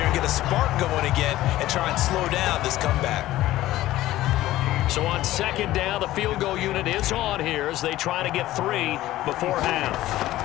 and get a spark going again and try and slow down this comeback. So on second down, the field goal unit is on here as they try to get 3 before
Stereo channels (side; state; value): right; quieter; 15.4 dB